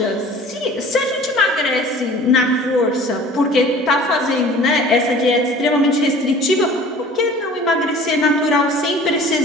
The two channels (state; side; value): normal; both; correlation 0.46